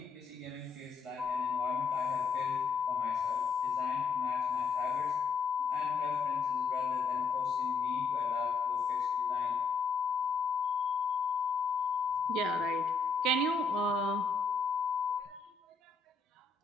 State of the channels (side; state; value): right; quieter; 4.8 dB